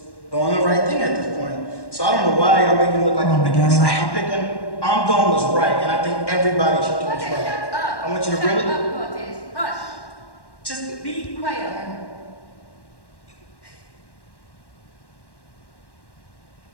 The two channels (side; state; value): right; late; 1.1 ms